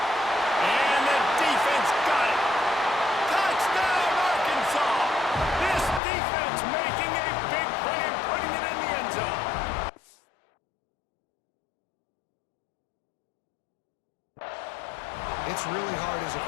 And the defense got it. Touchdown, Arkansas. This defense making a big play and putting it in the end zone. It's really hard as a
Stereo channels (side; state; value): right; drops out; at 6.0 s